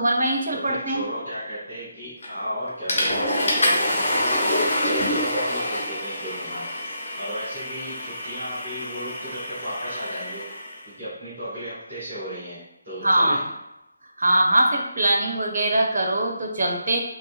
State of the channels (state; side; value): inverted; both; correlation -0.81